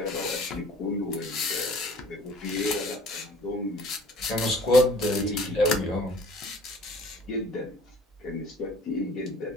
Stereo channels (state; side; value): normal; both; correlation 0.50